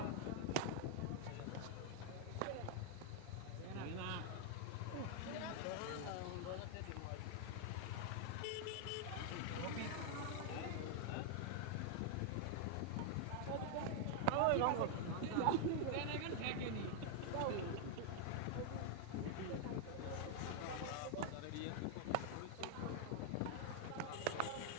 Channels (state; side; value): different; both; correlation 0.00